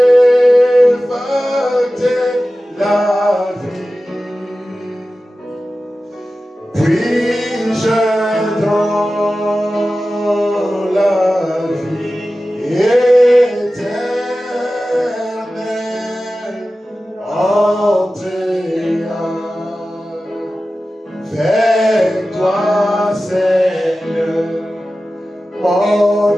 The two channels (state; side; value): normal; both; correlation 0.95